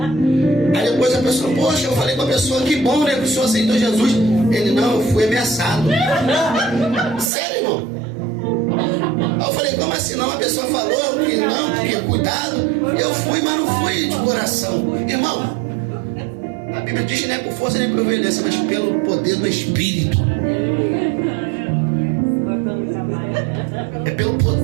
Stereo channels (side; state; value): left; drops out; at 7.3 s